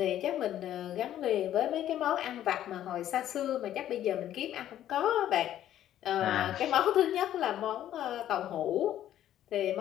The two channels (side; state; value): right; quieter; 11.8 dB